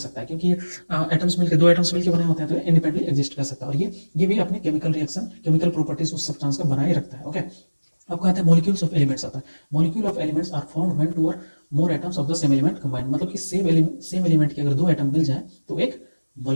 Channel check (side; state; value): both; inverted; correlation -1.00